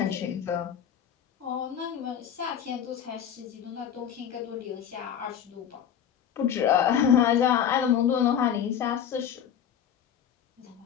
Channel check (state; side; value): quieter; right; 8.9 dB